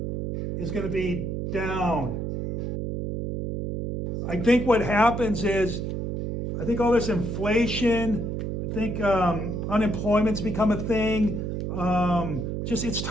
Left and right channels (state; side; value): noise; right; hum, 3 dB below the sound